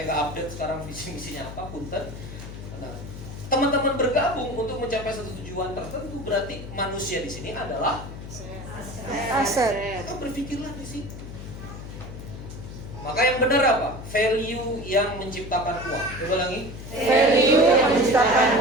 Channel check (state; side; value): noise; left; hum, 11 dB below the sound